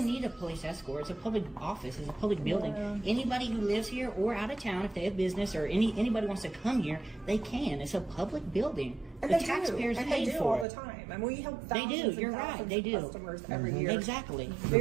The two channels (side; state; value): left; drops out; at 10.7 s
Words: need a police escort. It's a public office. It's a public building. Anybody who lives here or out of town, if they have business or anybody wants to come here, they can. It's a public building. And The they taxpayers do. And paid they do for all it. the time. And we help They thousands do. and You're right. thousands They of do. customers every year. Exactly. The